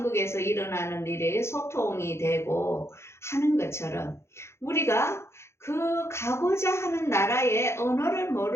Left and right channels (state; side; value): late; right; 0.13 ms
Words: 일어나는 일에 소통이 되고 하는 것처럼 우리가 그 가고자 하는 나라의 언어를